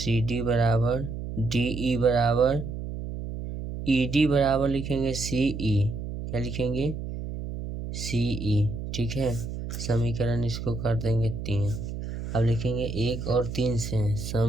बराबर DE बराबर ED बराबर लिखेंगे CE, क्या लिखेंगे CE, ठीक है। समीकरण इसको कर देंगे 3। अब लिखेंगे 1 और 3 से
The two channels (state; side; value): noise; right; hum, 7 dB below the sound